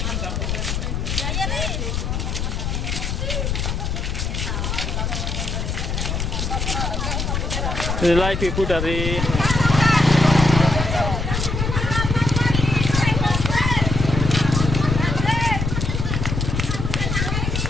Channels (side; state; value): left; noise; rumble, 1 dB below the sound